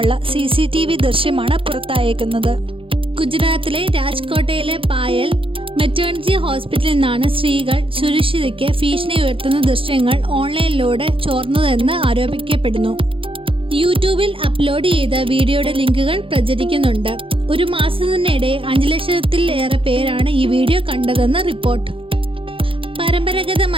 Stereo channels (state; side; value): late; left; 0.26 ms